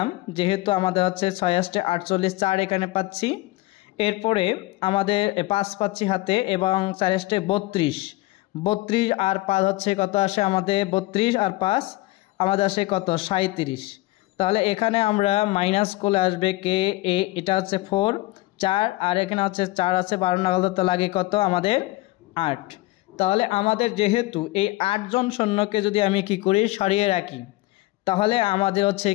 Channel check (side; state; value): right; quieter; 19.5 dB